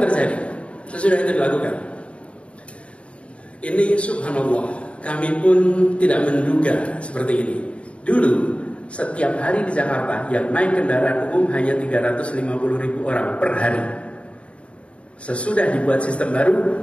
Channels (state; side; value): late; right; 0.061 ms